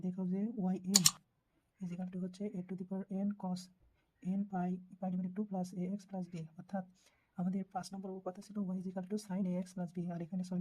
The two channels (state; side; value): identical; both; correlation 1.00